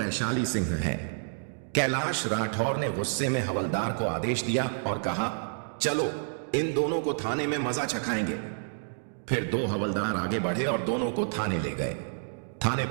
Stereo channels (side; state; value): left; silent; digital silence